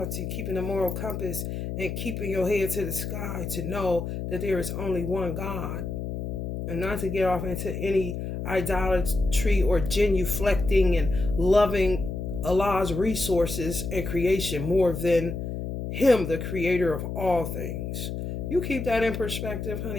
keeping the moral compass and keeping your head to the sky to know that there is only one God. And not to get off into any idolatry or genuflecting and loving Allah's resources and creation more than Him, the creator of all things. You keep that in perspective,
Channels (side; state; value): left; noise; hum, 5 dB below the sound